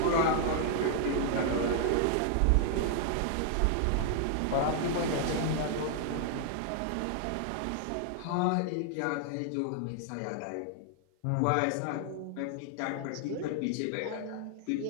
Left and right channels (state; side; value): different; both; correlation -0.01